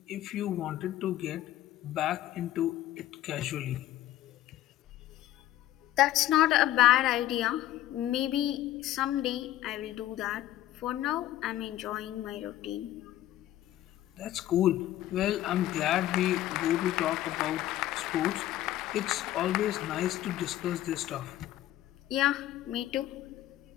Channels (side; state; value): right; quieter; 13.9 dB